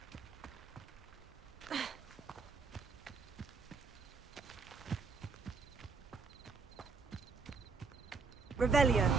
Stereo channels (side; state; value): left; quieter; 4.7 dB